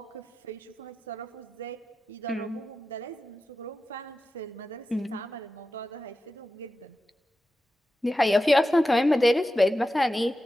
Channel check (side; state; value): both; normal; correlation 0.92